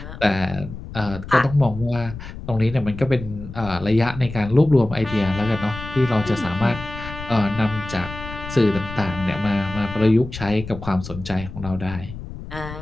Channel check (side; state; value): left; noise; rumble, 11 dB below the sound